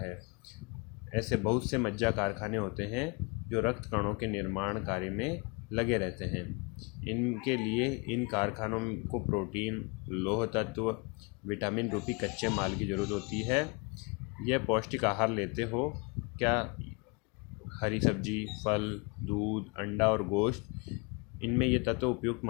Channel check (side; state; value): right; quieter; 30.8 dB